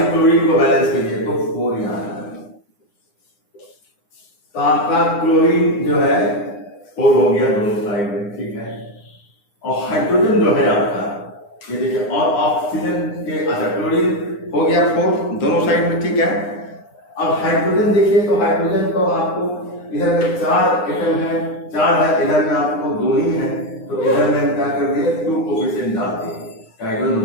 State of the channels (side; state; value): right; late; 9.7 ms